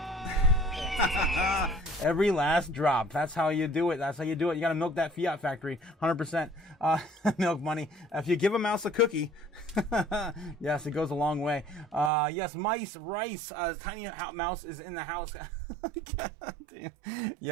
Every last drop. That's how you do it. You got to milk that fiat factory. 100%. Milk Money. If you give a mouse a cookie, yes, it goes a long way. Yes, Mice, Rice, Tiny Mouse is in the house.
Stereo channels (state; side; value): drops out; left; at 12.1 s